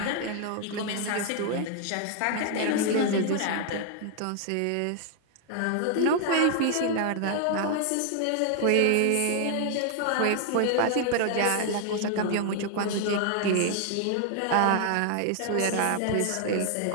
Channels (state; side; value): different; both; correlation 0.00